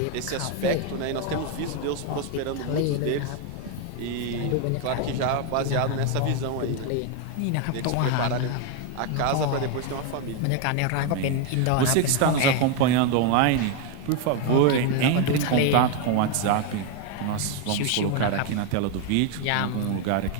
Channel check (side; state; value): both; different; correlation 0.01